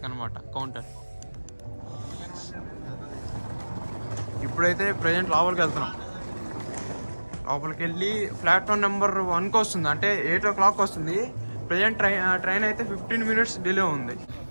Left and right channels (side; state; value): both; inverted; correlation -1.00